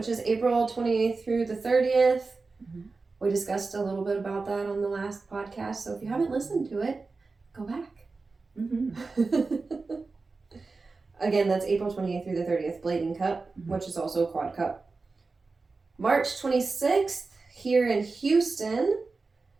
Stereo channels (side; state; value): left; quieter; 4.0 dB